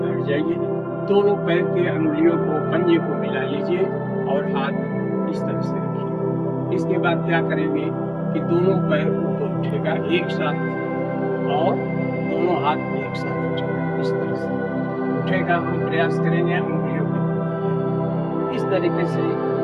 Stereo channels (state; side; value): identical; both; correlation 1.00